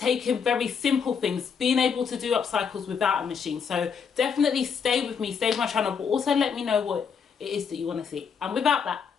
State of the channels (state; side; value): quieter; right; 6.5 dB